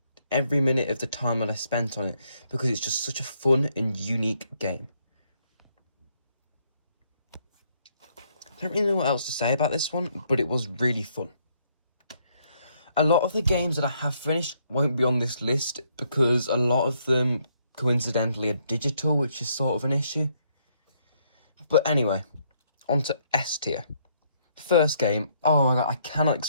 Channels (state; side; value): inverted; both; correlation -0.71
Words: time that I spent on it, because it's just such a fun and unique game. I don't really know what else to say about this one, but it was really fun. A lot of the games that I have finished won't be on this list because a lot of them, coincidentally, are digital, which is sort of an issue. But anyway, on to S tier. First game, oh my god, I cannot